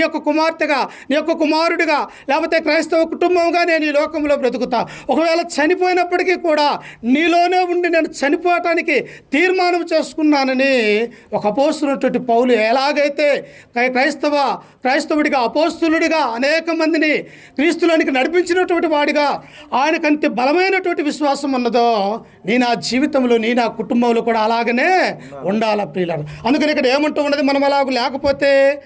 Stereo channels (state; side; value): identical; both; correlation 1.00